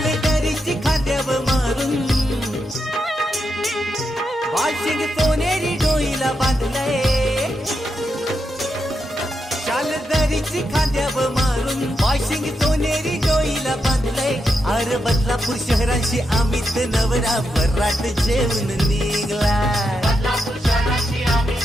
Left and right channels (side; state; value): both; normal; correlation 0.84